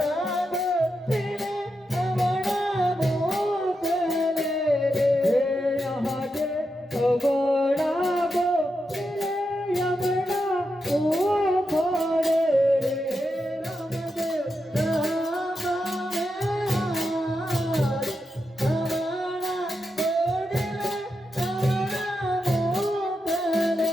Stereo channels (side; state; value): both; normal; correlation 0.87